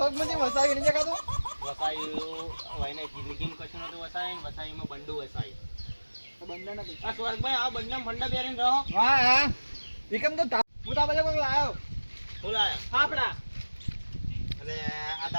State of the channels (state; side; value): inverted; both; correlation -1.00